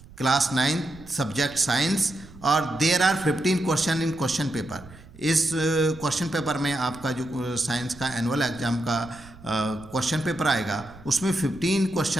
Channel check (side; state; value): right; noise; rumble, 20 dB below the sound